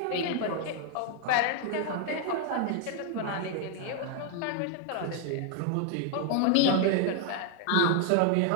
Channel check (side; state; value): both; different; correlation 0.00